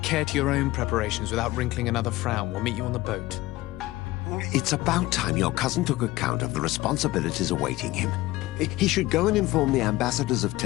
care to your own preparations without wrinkling another frown. We'll meet you on the boat. It's about time your cousin took account of the responsibilities awaiting him. He should go and inform the ambassadors of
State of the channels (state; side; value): quieter; right; 18.2 dB